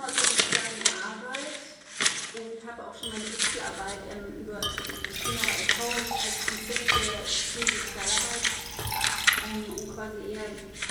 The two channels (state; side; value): identical; both; correlation 1.00